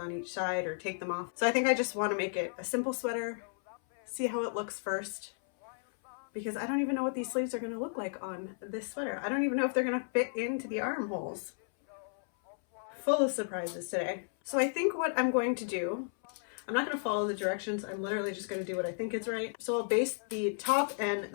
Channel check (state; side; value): silent; right; 55 dB below the other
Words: each side or take them off. So I think I just want to make it a simple sweater, see how it looks first, because I don't even know what these sleeves are going to look like on this sweater. I don't even know if they're going to fit into the armholes. Full of surprises today. So I think what I'm going to do, I'm not going to follow the directions. I'm literally just going to do what I think is right. So I'll base the top and